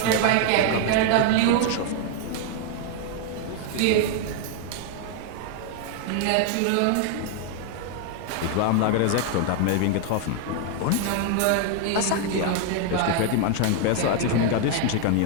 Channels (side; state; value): both; different; correlation 0.00